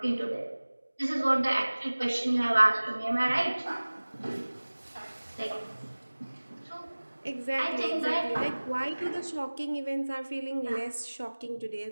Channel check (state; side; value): inverted; both; correlation -1.00